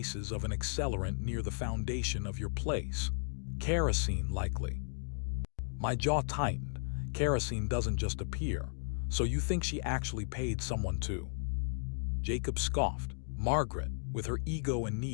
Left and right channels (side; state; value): right; silent; digital silence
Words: of an accelerant near the foundation of your place. Kerosene, likely." My jaw tightened. Kerosene doesn't just appear. "So you think she actually paid someone too?" Jacob scoffed. "Margaret, with her ego and